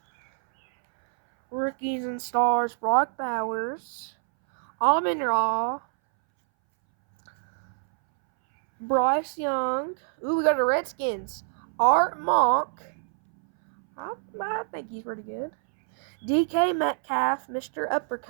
Rookies and stars, Brock Bowers, Amon-Ra, Bryce Young. Ooh, we got the Redskins. Art Monk. I think he's pretty good. DK Metcalf, Mr.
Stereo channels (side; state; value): left; silent; 61 dB below the other